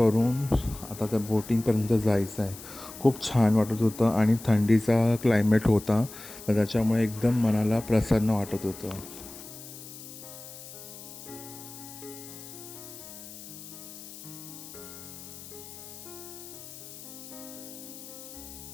आता त्या बोटिंगपर्यंत जायचं आहे. खूप छान वाटत होतं आणि थंडीचा क्लायमेट होता, तर त्याच्यामुळे एकदम मनाला प्रसन्न वाटत होतं.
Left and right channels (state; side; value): noise; left; hiss, 14 dB below the sound